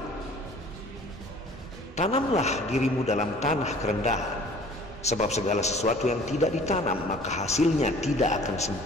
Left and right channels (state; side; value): normal; both; correlation 0.50